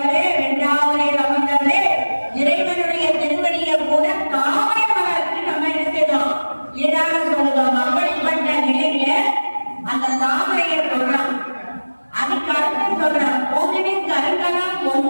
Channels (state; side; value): inverted; both; correlation -1.00